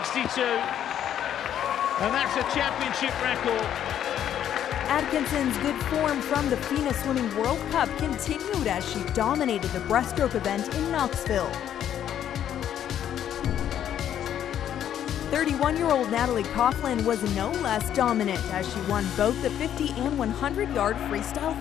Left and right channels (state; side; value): quieter; right; 10.2 dB